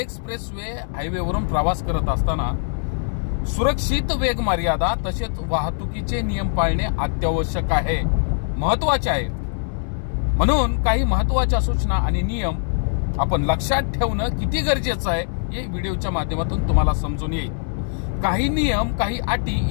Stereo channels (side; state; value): right; silent; digital silence